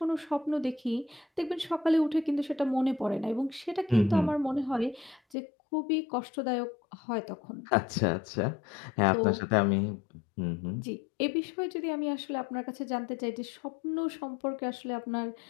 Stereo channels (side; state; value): right; drops out; at 5.2 s